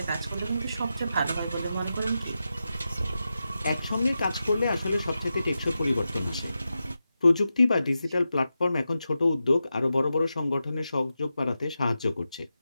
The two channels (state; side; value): inverted; both; correlation -0.90